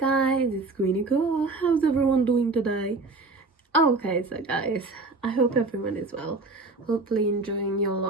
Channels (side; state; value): left; quieter; 3.5 dB